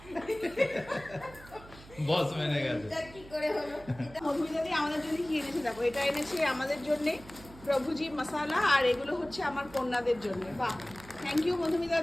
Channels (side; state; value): right; noise; hum, 19 dB below the sound